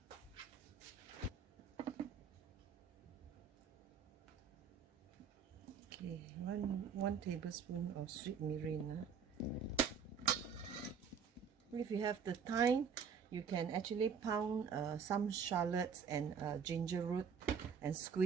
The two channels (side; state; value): left; quieter; 6.5 dB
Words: Okay, one tablespoon of sweet mirin. If you have the time, you can actually pound some shallots and ginger root and